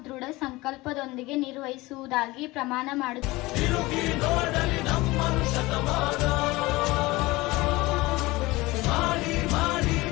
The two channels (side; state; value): right; quieter; 20.9 dB